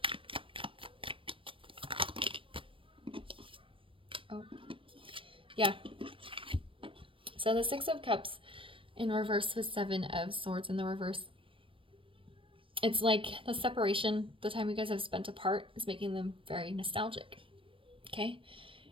Oh, yeah. So the Six of Cups in reverse with Seven of Swords in the reverse. It's like the separation, the time you guys have spent apart is making them very nostalgic. Okay?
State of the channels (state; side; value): late; left; 0.25 ms